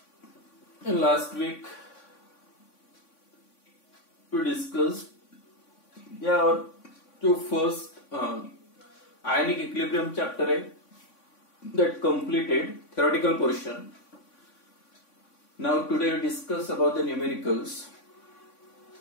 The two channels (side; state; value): right; late; 3.5 ms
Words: In last week we discussed our जो first ionic equilibrium chapter है that completed theoretical portion. Now today we discuss about the numericals.